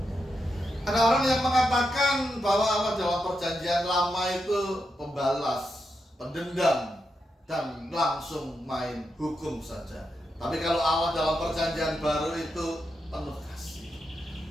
Ada orang yang mengatakan bahwa Allah dalam perjanjian lama itu pembalas, pendendam, dan langsung main hukum saja. Tapi kalau Allah dalam perjanjian baru itu penuh kasih.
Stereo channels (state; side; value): normal; both; correlation 0.86